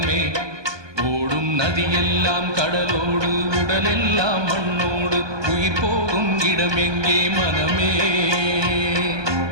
ஓடும் நதியெல்லாம் கடலோடு உடலெல்லாம் மண்ணோடு உயிர் போகும் இடமெங்கே மனமே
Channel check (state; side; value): late; left; 1.2 ms